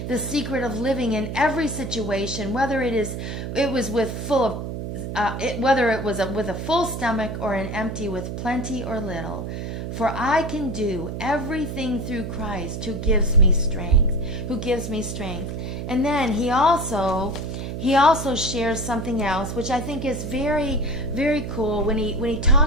the secret of living in every situation, whether it was with full of whether it was with a full stomach or an empty, with plenty or little. For I can do everything through Christ who gives me strength, And then he also shares something else, which I think is very, very cool, when he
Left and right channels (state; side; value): noise; right; hum, 5 dB below the sound